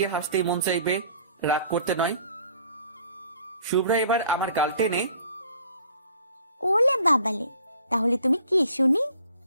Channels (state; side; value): inverted; both; correlation -0.54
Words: হাসতেই মন চাইবে, রাগ করতে নয়। শুভ্রা এবার আমার গাল টেনে, ওলে বাবালে, তাহলে তুমি কি শুনি?